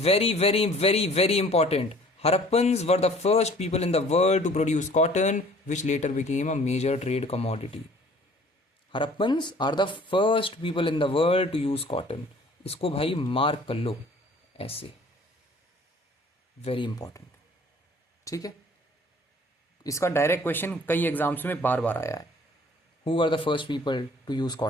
very important. Harappans were the first people in the world to produce cotton, which later became a major trade commodity. Harappans are the first people in the world to use cotton. इसको भाई mark कर लो ऐसे, very important. ठीक है. इसका direct question कई exams में बार बार आया है. Who were the first people to use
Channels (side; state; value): both; normal; correlation 0.52